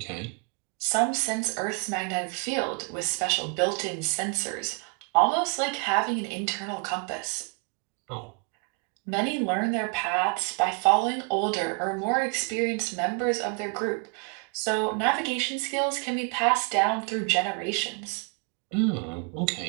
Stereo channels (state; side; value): quieter; left; 36.8 dB